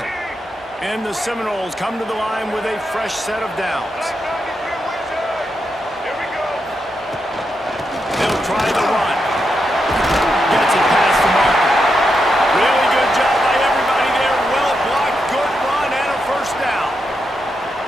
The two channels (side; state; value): both; normal; correlation 0.84